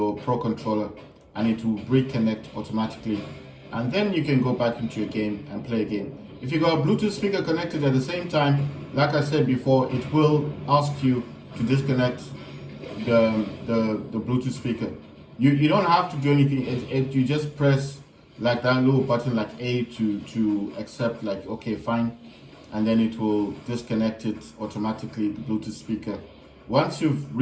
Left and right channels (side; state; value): both; identical; correlation 1.00